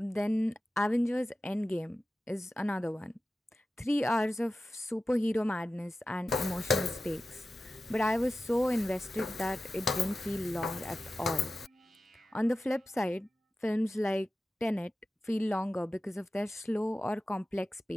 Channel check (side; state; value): both; normal; correlation 0.94